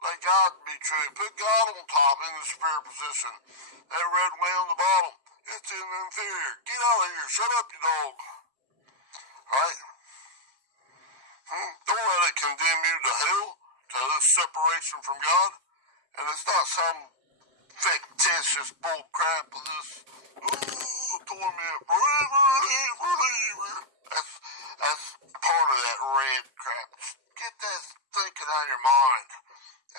Let God be true. Put God on top in the superior position. That red way on the bottom, it's in the inferior. Get out of here. Shut up, you dog. Alright? Don't let it condemn you to hell, to this separation from God. And it's not some fictitious bull crap of this, torment forever and forever. That's part of that red crap. Get that thinking out of your mind.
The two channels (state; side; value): late; left; 7.6 ms